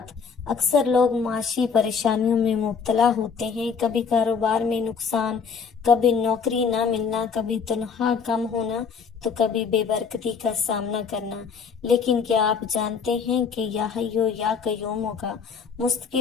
اکثر لوگ معاشی پریشانیوں میں مبتلا ہوتے ہیں، کبھی کاروبار میں نقصان، کبھی نوکری نہ ملنا، کبھی تنخواہ کم ہونا، تو کبھی بے برکتی کا سامنا کرنا۔ لیکن کیا آپ جانتے ہیں کہ یا حیو یا قیوم کا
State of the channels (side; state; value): right; quieter; 6.0 dB